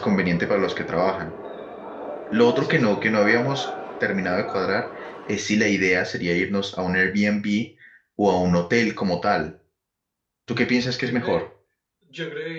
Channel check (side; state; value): both; identical; correlation 1.00